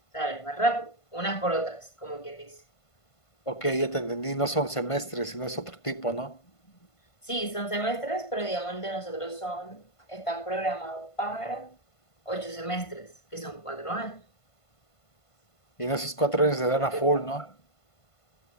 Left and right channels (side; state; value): right; late; 1.5 ms